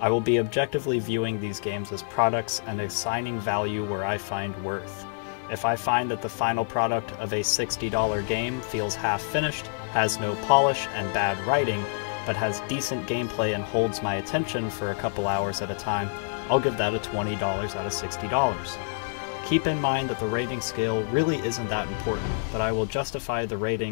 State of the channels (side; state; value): right; silent; 60 dB below the other